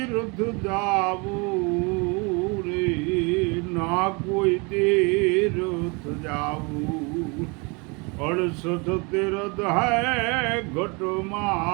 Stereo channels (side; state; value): left; quieter; 30.1 dB